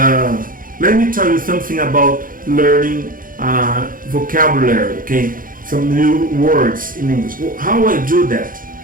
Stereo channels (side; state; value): left; late; 0.40 ms